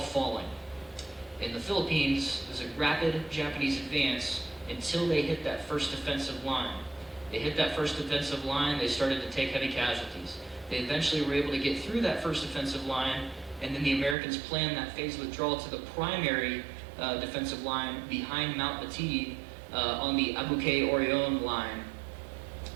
In the Philippines, there's a rapid Japanese advance until they hit that first defensive line. They hit that first defensive line, they started to take heavy casualties. They eventually were able to get through that first defensive line, and then the Americans planned that phase withdrawal to the primary defensive line behind Mount Bataan on the Abuke-Orion line.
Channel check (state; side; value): drops out; left; at 14.2 s